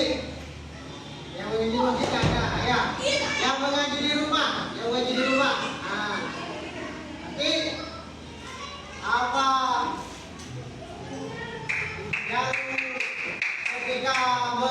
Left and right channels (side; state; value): both; identical; correlation 1.00